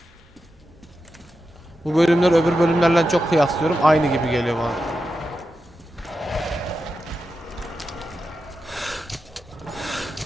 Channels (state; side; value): normal; both; correlation 0.89